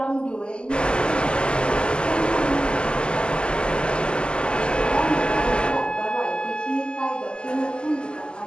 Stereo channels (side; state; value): right; late; 0.049 ms